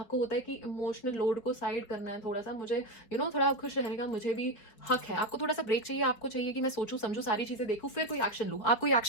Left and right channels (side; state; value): right; late; 4.8 ms